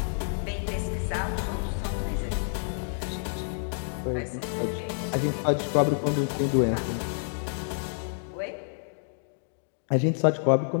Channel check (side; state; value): right; silent; digital silence